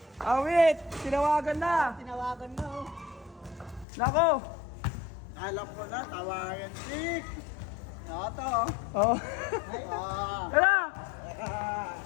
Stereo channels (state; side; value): drops out; right; at 3.9 s